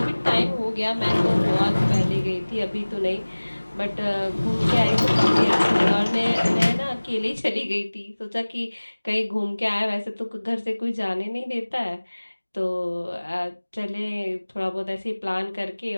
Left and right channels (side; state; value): both; inverted; correlation -1.00